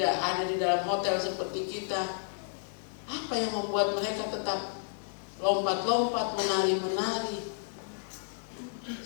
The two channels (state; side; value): silent; right; 57 dB below the other